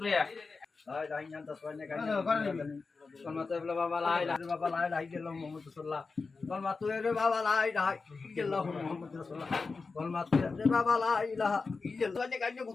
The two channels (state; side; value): quieter; right; 4.3 dB